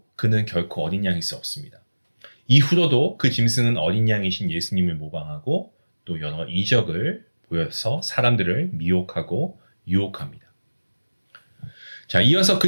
그는 결코 어린 양일 수 없습니다. 이후로도 그 짐승은 어린 양이신 예수님을 모방하고 또 여러 이적을 보여서 사람들을 미혹하고 유혹합니다. 자, 이어서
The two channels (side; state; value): both; inverted; correlation -1.00